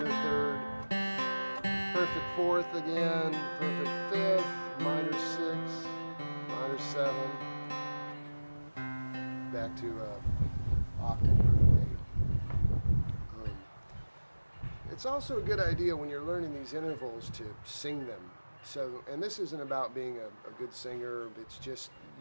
3rd, perfect 4th again, perfect 5th, minor 6, minor 7, back to octave, perfect 8. It's also a good idea when you're learning these intervals to sing them. So, and this isn't about being a good singer, it's just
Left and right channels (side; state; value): both; inverted; correlation -1.00